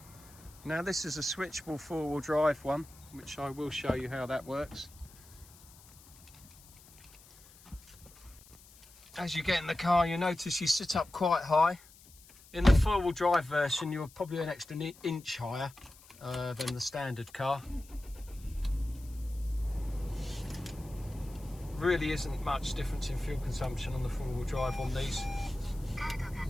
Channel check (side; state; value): left; noise; hiss, 23 dB below the sound